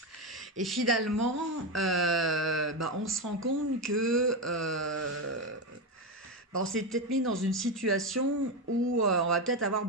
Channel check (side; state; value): both; normal; correlation 0.12